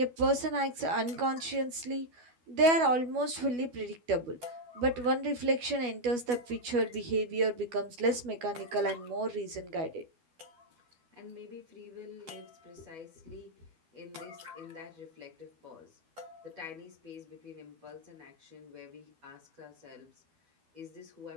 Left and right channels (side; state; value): left; late; 12 ms